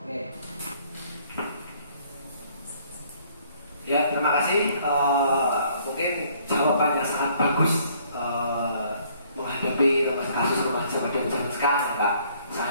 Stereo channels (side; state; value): both; inverted; correlation -0.62